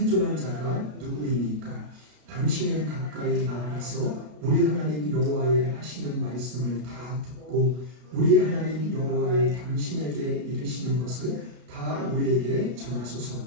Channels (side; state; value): left; late; 33 ms